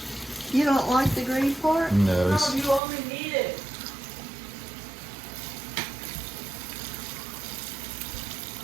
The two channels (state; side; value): drops out; left; at 2.8 s